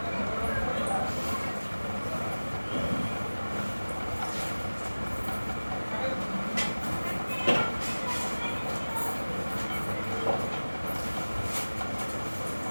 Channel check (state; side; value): inverted; both; correlation -1.00